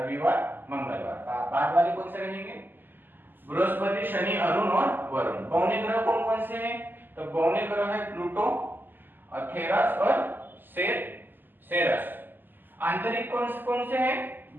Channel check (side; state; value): left; late; 0.091 ms